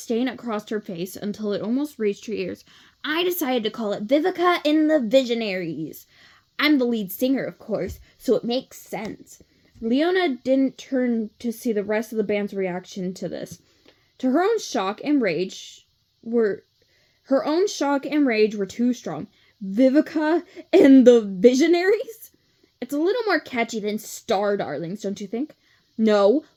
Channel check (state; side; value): identical; both; correlation 1.00